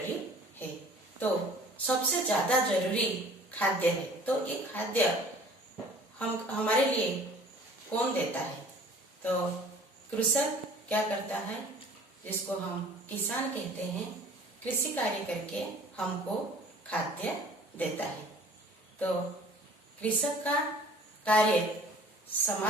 है। तो सबसे ज्यादा जरूरी खाद्य है। तो ये खाद्य हमारे लिए कौन देता है? तो कृषक क्या करता है, जिसको हम किसान कहते हैं, कृषि कार्य करके हमको खाद्य देता है। तो कृषक का कार्य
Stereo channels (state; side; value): normal; both; correlation 0.50